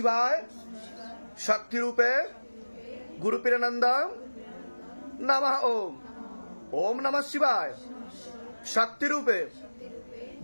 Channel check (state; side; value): inverted; both; correlation -1.00